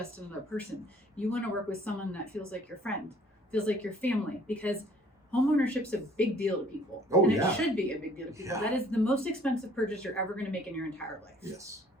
another person. You want to work with someone that feels like your friend, feels like your family, because homeownership's a big deal to people. Oh, and it should be a big deal to people. That is the most expensive purchase you're ever going to make in your entire life. Yes.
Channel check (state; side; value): normal; both; correlation 0.57